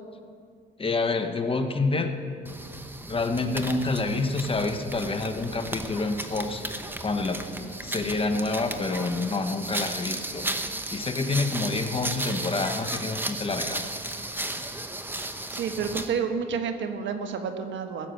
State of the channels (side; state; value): both; normal; correlation 0.43